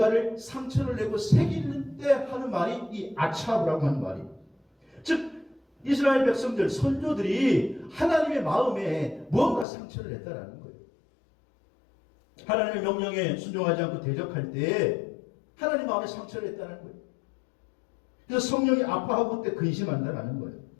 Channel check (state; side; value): drops out; right; at 9.7 s